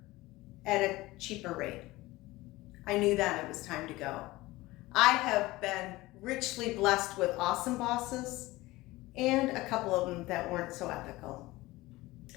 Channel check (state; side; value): quieter; right; 19.4 dB